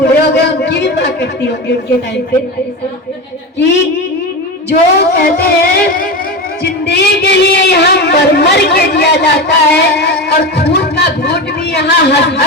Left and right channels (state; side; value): normal; both; correlation 0.22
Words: हो गए उनकी भी माँ करती होगी उनके टाइम पे, कि जो कहते हैं जिंदगी के लिए यहाँ मर के दिया जाता है, और खून का घूट भी यहाँ हंस